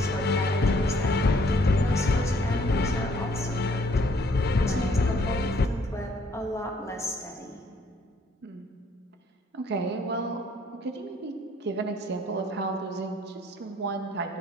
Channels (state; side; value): normal; both; correlation 0.63